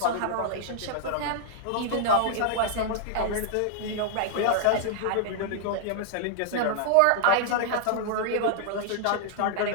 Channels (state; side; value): different; both; correlation -0.01